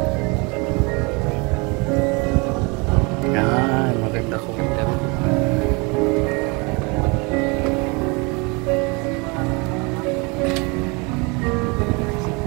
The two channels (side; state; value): left; quieter; 29.1 dB